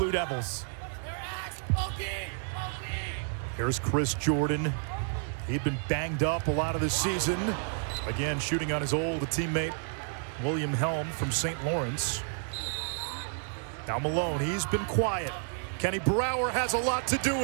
Devils. Here's Chris Jordan. He'd been banged up a lot of this season. Again, shooting on his old teammate, William Helm from St. Lawrence. Now Malone, he's been quiet. Kenny Brower has a lot to do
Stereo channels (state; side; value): silent; left; 57 dB below the other